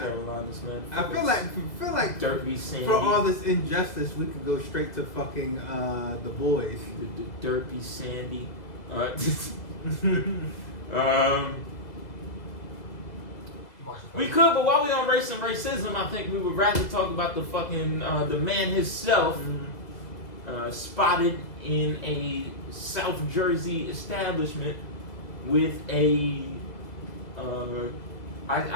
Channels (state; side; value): late; right; 2.0 ms